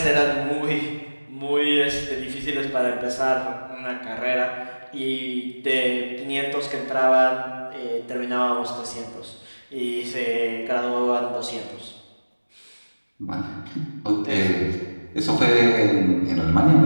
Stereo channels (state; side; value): inverted; both; correlation -1.00